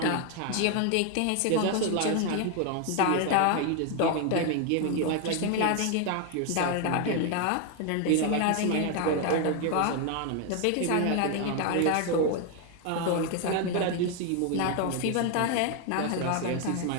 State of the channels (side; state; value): both; different; correlation 0.01